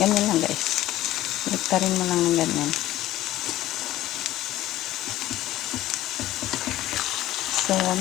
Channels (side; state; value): right; quieter; 14.9 dB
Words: ganyan lang guys. Baliktarin mo lang ng ganyan. So,